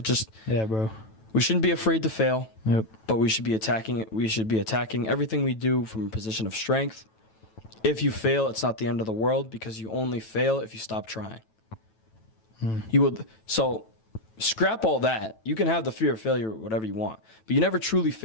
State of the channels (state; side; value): late; right; 9.1 ms